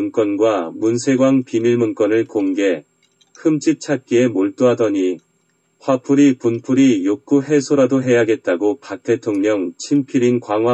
문세광 비밀문건을 공개, 흠집 찾기에 몰두하더니 화풀이 분풀이 욕구 해소라도 해야겠다고 박 대통령 친필인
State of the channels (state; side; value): identical; both; correlation 1.00